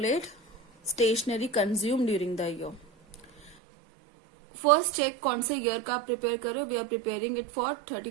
stationery consumed during the year. First check कौन से year का prepare करो. We are preparing it for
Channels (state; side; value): drops out; left; at 3.6 s